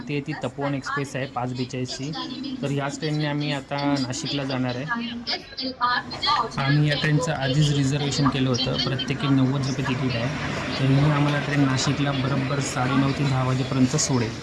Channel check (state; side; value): identical; both; correlation 1.00